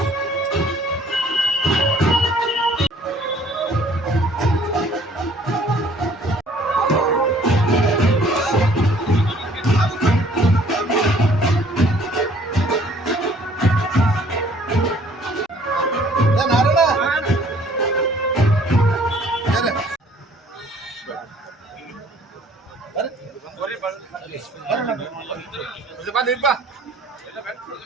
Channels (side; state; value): both; normal; correlation 0.57